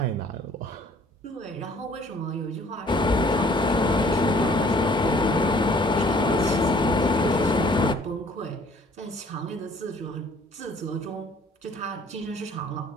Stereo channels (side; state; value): both; normal; correlation 0.57